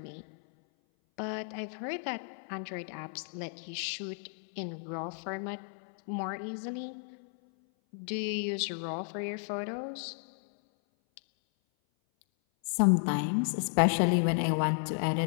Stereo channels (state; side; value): silent; right; 56 dB below the other